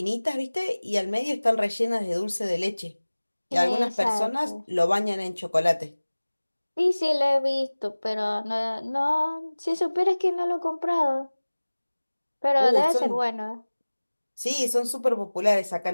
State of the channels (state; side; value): inverted; both; correlation -1.00